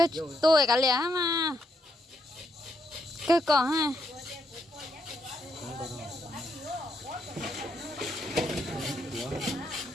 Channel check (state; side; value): normal; both; correlation 0.77